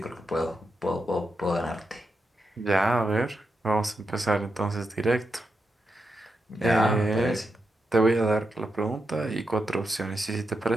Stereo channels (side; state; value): both; normal; correlation 0.86